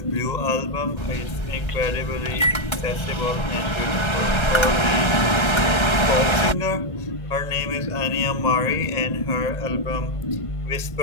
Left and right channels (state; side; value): late; right; 1.3 ms